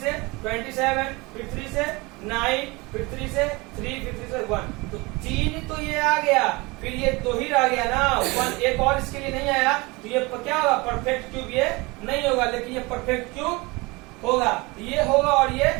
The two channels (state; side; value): quieter; left; 24.8 dB